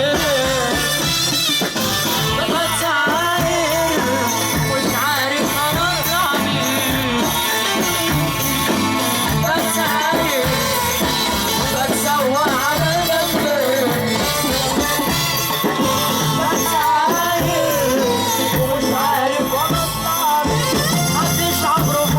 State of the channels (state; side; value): identical; both; correlation 1.00